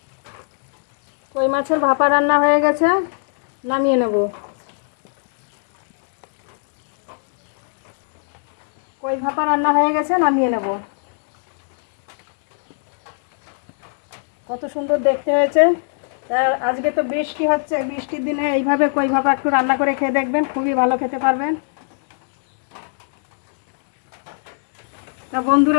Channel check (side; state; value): right; silent; digital silence